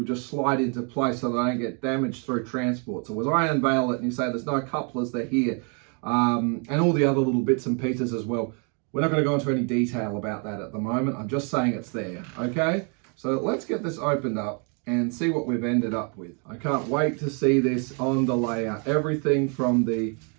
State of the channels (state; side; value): quieter; left; 37.8 dB